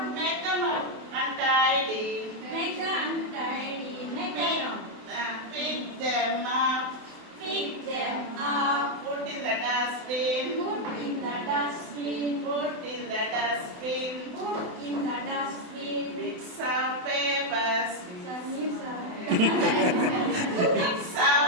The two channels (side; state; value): left; late; 28 ms